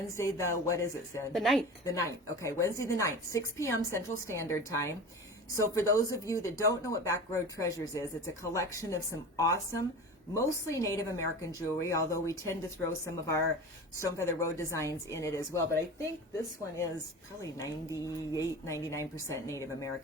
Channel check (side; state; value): both; normal; correlation 0.33